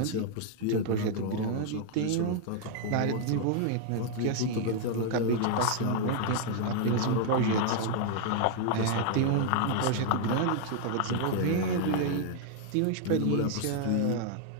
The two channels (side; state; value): both; different; correlation 0.00